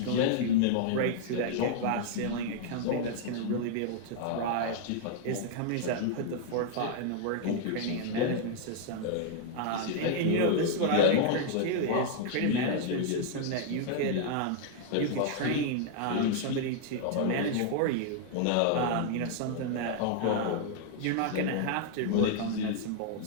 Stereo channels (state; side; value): different; both; correlation -0.01